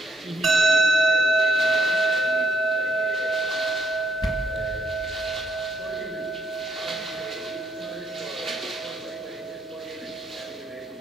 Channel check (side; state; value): both; normal; correlation 0.71